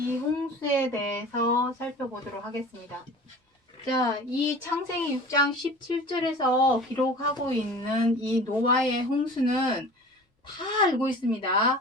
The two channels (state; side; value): normal; both; correlation 0.40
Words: 홍수에 대해서 살펴보도록 하겠습니다. 자, 이 창세기 6장 17절에서 기록하고 있는 이 노아의 홍수는 다 알고